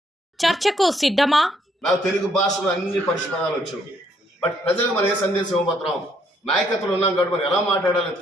చర్చకు సిద్ధమా? నాకు తెలుగు భాషలో అన్ని పరిష్కారాలు వచ్చాయి. బట్ ప్రజలకు మనం ఏ సందేశం ఇవ్వబోతున్నాం? నాయకత్వం ఉన్నాం కాబట్టి మనం ఎలా మాట్లాడాలని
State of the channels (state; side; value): normal; both; correlation 0.70